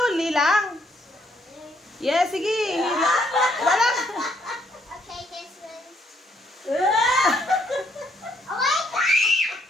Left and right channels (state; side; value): normal; both; correlation 0.70